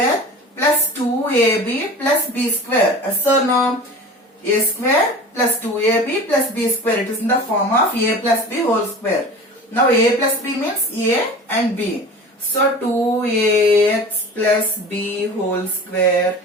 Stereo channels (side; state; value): both; normal; correlation 0.37